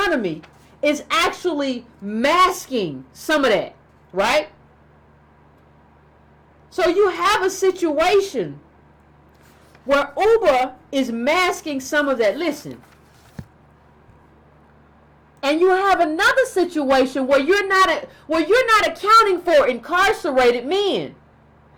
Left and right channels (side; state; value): both; identical; correlation 1.00